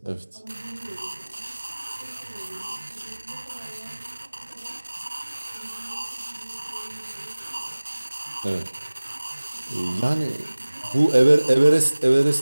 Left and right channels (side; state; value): both; inverted; correlation -1.00